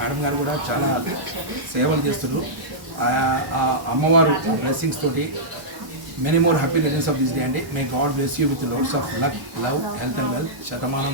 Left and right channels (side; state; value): left; late; 1.0 ms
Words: గారు కూడా చాలా సేవలు చేస్తున్నారు. అమ్మవారు బ్లెస్సింగ్స్ తోటి many more happy returns of this day అండి. May God bless you with loads of luck, love, health and wealth.